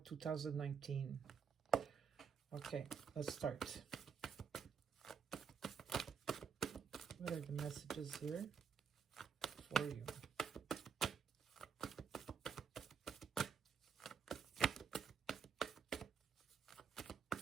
2019. Okay, let's start. What are the messages here for you?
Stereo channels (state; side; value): quieter; left; 6.6 dB